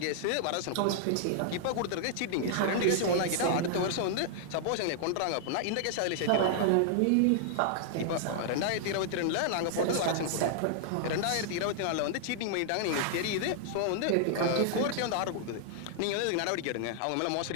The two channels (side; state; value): both; different; correlation -0.01